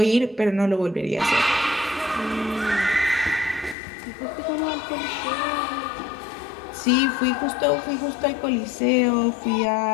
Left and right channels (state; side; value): drops out; right; at 3.8 s